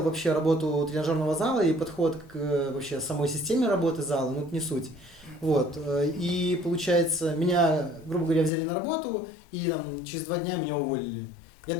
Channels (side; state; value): right; drops out; at 8.5 s